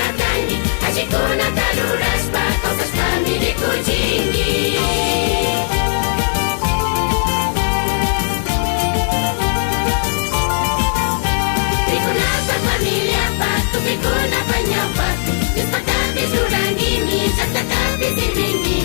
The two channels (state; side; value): silent; right; 68 dB below the other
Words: achikuna tarurashpa kawsashpami rikuchinki rikunapa familiapa tupikunapan ñawpapi Diospaktapis rurangimi llaqtatapis